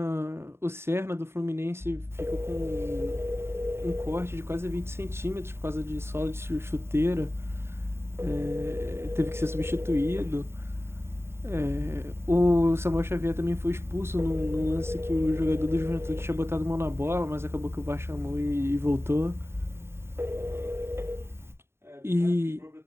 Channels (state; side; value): late; left; 0.12 ms